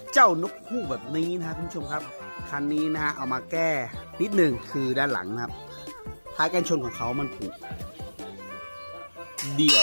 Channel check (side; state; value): both; inverted; correlation -1.00